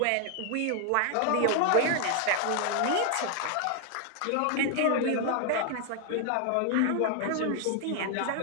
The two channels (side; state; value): both; different; correlation 0.00